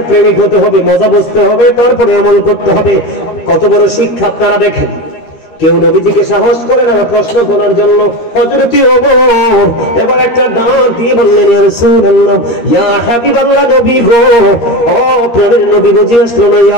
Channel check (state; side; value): late; right; 13 ms